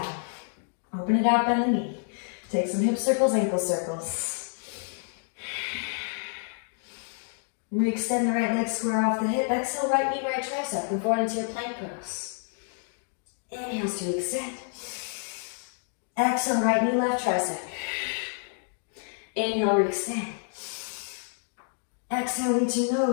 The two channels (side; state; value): right; silent; 59 dB below the other